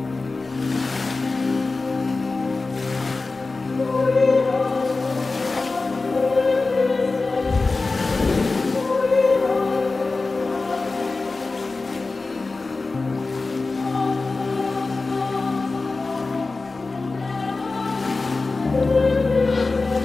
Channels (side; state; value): right; quieter; 3.7 dB